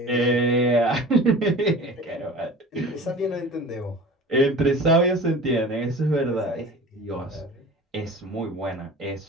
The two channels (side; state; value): both; normal; correlation 0.39